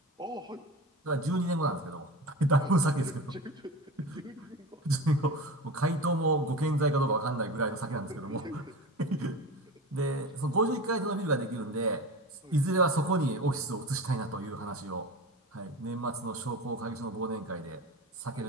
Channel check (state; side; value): normal; both; correlation 0.29